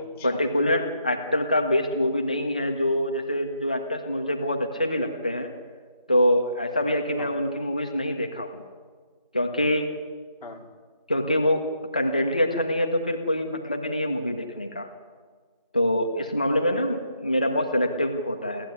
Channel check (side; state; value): both; inverted; correlation -0.75